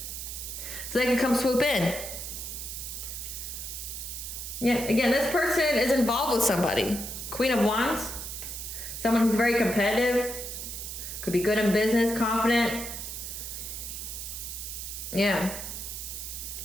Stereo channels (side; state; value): right; noise; hiss, 7 dB below the sound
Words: so they can come swoop in. Yeah, again, this person is involved with somebody. Queen of Wands. Someone who's very competitive. Could be good in business, confident. Yeah.